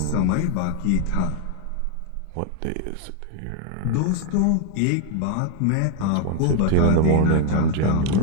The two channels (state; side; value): different; both; correlation 0.00